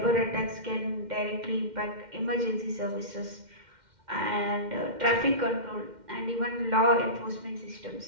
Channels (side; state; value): left; late; 2.1 ms